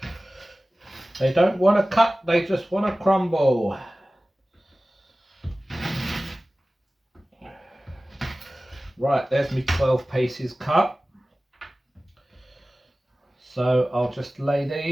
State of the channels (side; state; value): both; normal; correlation 0.97